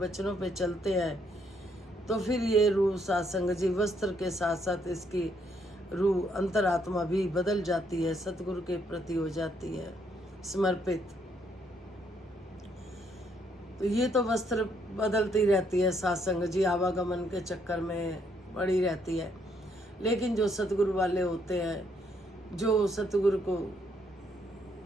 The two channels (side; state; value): both; normal; correlation 0.71